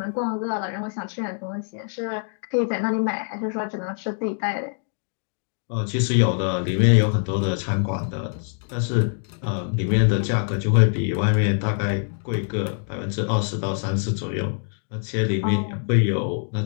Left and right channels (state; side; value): silent; right; digital silence